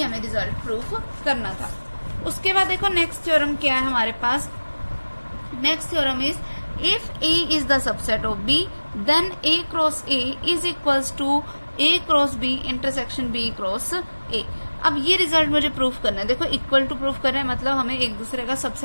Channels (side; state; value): both; inverted; correlation -1.00